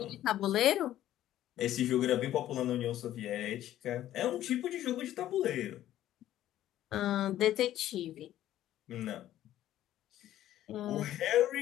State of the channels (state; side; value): quieter; right; 13.0 dB